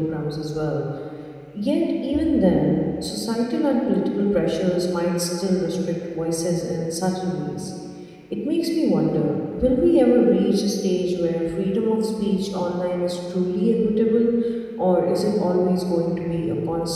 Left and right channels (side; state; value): both; identical; correlation 1.00